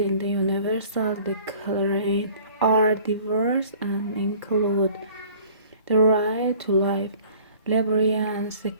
the Universal Declaration are diverse and include the right to life, liberty and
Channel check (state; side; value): inverted; both; correlation -0.50